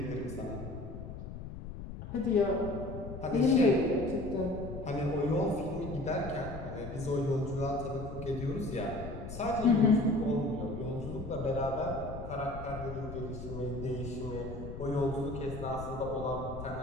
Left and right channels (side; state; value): left; noise; rumble, 9 dB below the sound